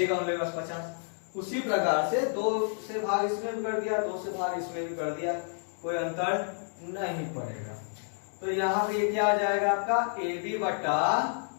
उनके पास 50। उसी प्रकार से 2 से भाग इसमें भी कर दिया, 2 से भाग इसमें भी कर दिया, कोई अंतर नहीं पड़ेगा। तो यहाँ पे क्या आ जाएगा आपका AB बटा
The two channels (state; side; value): silent; right; 58 dB below the other